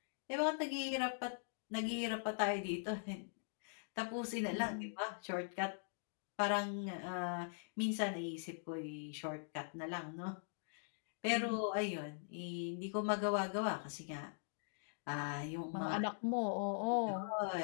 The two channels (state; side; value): silent; right; digital silence